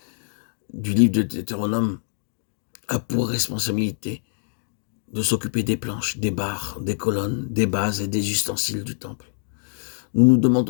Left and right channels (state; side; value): silent; right; digital silence